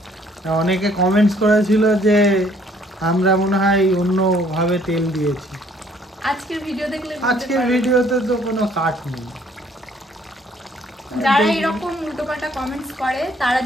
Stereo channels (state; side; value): normal; both; correlation 0.62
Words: অনেকে কমেন্টস করেছিল যে আমরা মনে হয় অন্যভাবে তেল দিয়েছি। আজকের ভিডিও দেখলে আজকের ভিডিওতে তো কোনো কাট নেই। যারা এরকম উল্টোপাল্টা কমেন্টস করে তারা